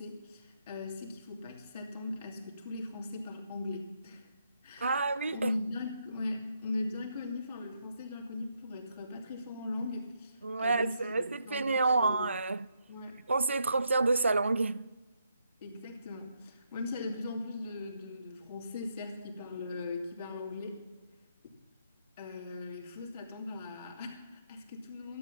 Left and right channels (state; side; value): inverted; both; correlation -0.78